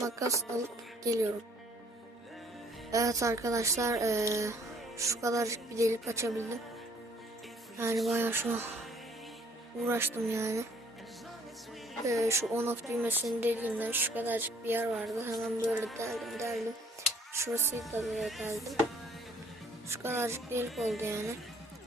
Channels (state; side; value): normal; both; correlation 0.60